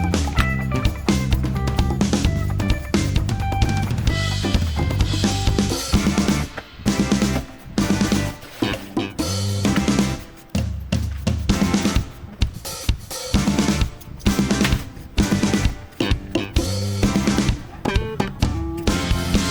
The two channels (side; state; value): both; identical; correlation 1.00